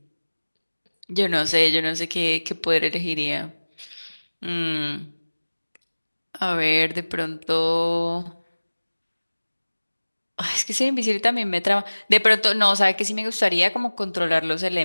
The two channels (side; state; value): both; inverted; correlation -1.00